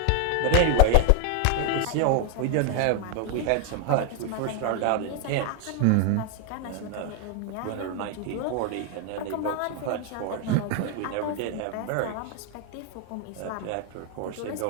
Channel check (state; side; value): different; both; correlation 0.00